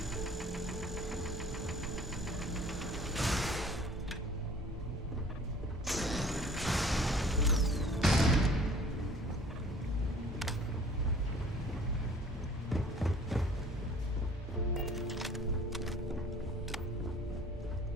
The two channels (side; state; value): both; normal; correlation 0.51